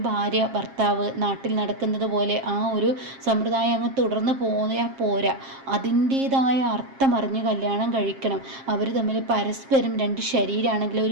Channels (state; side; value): late; left; 7.4 ms